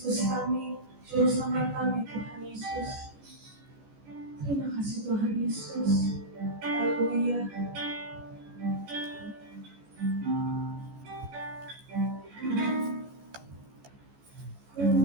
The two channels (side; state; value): left; late; 14 ms